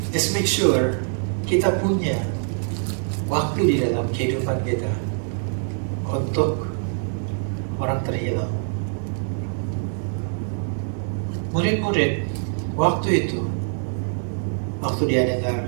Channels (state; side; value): silent; left; 63 dB below the other